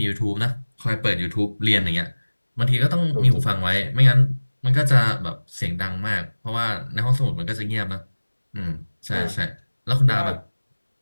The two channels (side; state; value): both; inverted; correlation -1.00